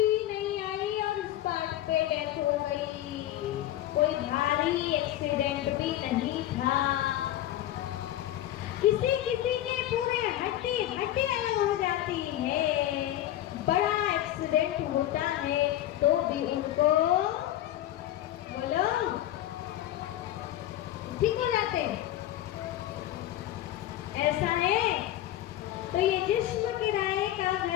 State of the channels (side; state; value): right; quieter; 13.2 dB